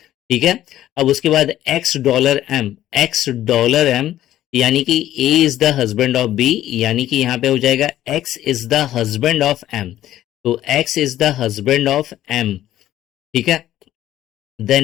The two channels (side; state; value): right; quieter; 13.1 dB